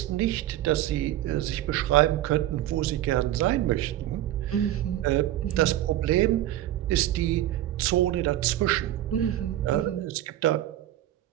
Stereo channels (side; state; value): left; quieter; 13.6 dB